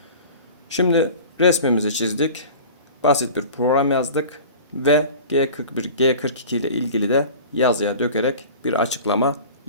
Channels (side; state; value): both; inverted; correlation -0.39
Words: Şimdi resmimizi çizdik. Basit bir program yazdık ve G41, G42 ile ilgili de yazıya dökerek bir açıklama